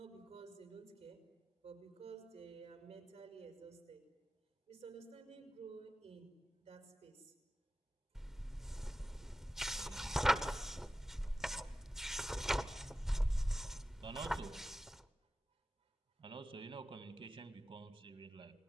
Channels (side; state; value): both; normal; correlation 0.94